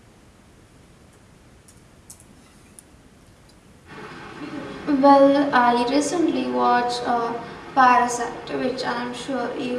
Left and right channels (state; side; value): identical; both; correlation 1.00